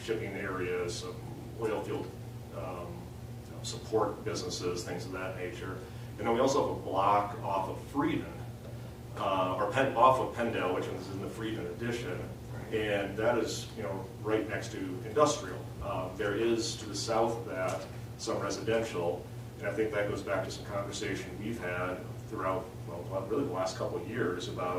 shipping areas, some oil field support businesses, things of that nature. And then we also have a block off of Frieden, off of Pendale, which is in the Frieden addition, and that is, right next to industrial. There is to the south of that some residential, and I think that goes back to some conversation we've had throughout, really the last couple of years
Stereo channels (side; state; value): both; identical; correlation 1.00